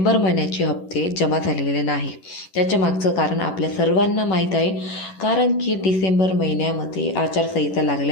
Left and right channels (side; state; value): right; late; 11 ms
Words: महिन्याचे हप्ते जमा झालेले नाही. त्याच्या मागचं कारण आपल्या सर्वांना माहीत आहे. कारण की डिसेंबर महिन्यामध्ये आचारसंहिता